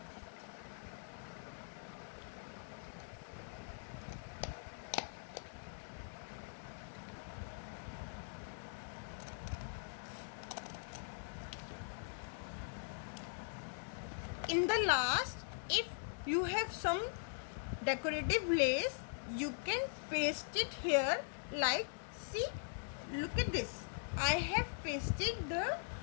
In the last, if you have some decorative lace, you can paste it here like, see, look at this. I have pasted the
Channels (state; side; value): silent; right; digital silence